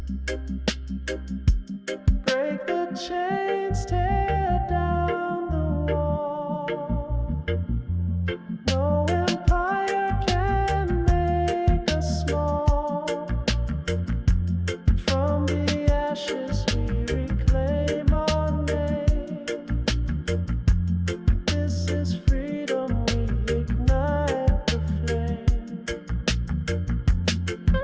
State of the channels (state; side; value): identical; both; correlation 1.00